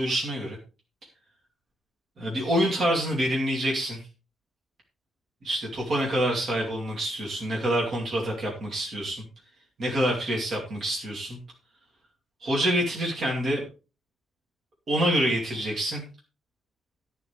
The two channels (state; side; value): normal; both; correlation 0.76